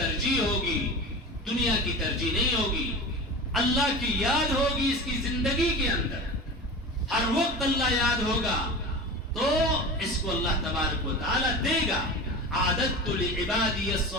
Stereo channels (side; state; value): both; normal; correlation 0.31